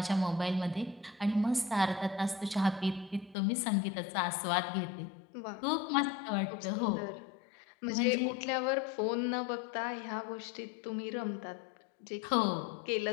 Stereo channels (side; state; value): right; drops out; at 3.4 s